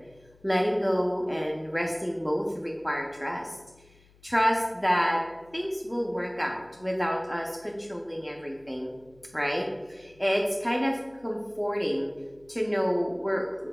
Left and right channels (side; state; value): left; noise; hum, 28 dB below the sound